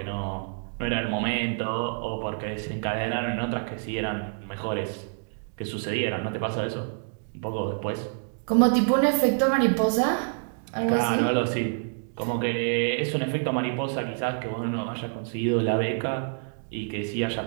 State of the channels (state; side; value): silent; left; digital silence